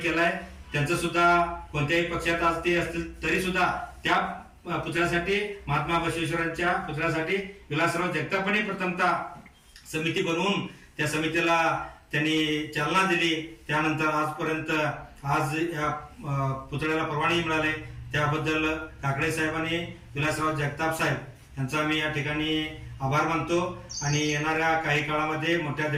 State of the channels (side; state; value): both; identical; correlation 1.00